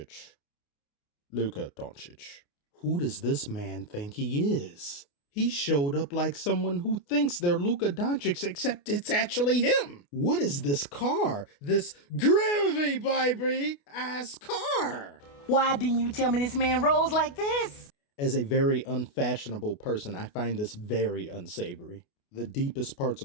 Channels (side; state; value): right; late; 28 ms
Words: Luka Doncic. Who does this man think he is? He showed up like someone who thinks they're Luka Doncic, except it's actually him. What is this car? This gravy baby ass car? Why didn't you tell me this man rolls like this? As a very unfashionable person, I find this very unsavory. The deepest parts